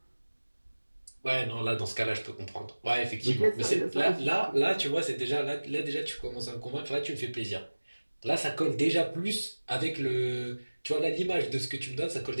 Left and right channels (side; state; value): both; inverted; correlation -1.00